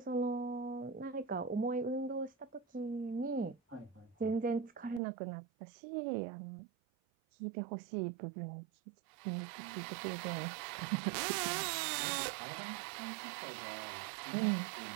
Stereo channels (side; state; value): left; drops out; at 5.0 s